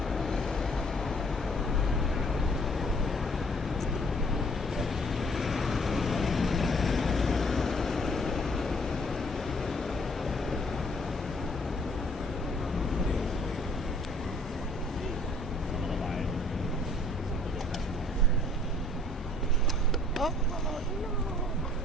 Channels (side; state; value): both; normal; correlation 0.59